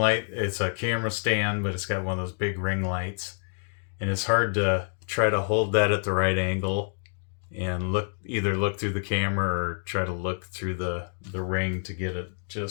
It's a camera stand, but it's got one of those big ring lights, and it's hard to try to hold that at the right angle and either look through the camera or try to look through the ring to get it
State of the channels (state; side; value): silent; right; digital silence